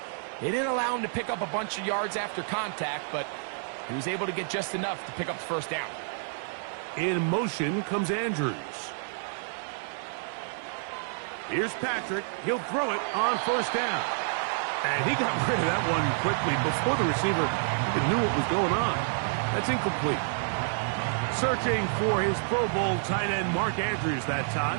they didn't allow him to pick up a bunch of yards after contact, but he was able to get just enough to pick up the first down. In motion comes Andrews. Here's Patrick. He'll throw it on first down. And he got rid of that one quickly before the receiver even knew what was going on. That's incomplete. Searching for his Pro Bowl tight end Mark Andrews that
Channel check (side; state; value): left; silent; 59 dB below the other